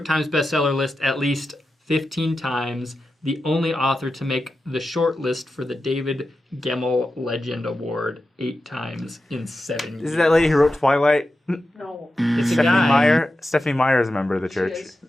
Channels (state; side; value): normal; both; correlation 0.91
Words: Times bestseller list at least 15 times. The only author to make the short list for the David Gemmell Legend Award 8 times in 7 years. Is it that lady who wrote Twilight? No. It's a Stephanie guy. Meyer? Stephanie Meyer is a member of the She church. is.